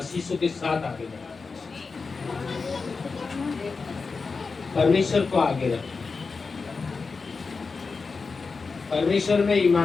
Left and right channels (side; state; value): right; quieter; 4.5 dB